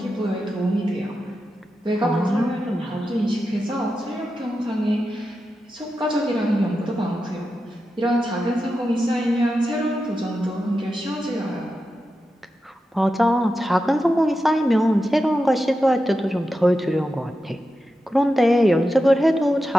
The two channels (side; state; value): both; normal; correlation 0.90